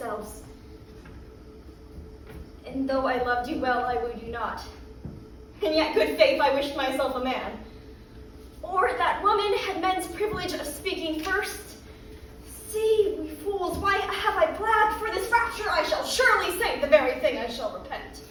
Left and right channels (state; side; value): identical; both; correlation 1.00